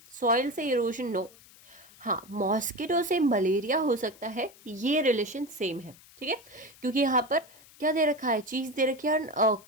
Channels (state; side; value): noise; left; hiss, 24 dB below the sound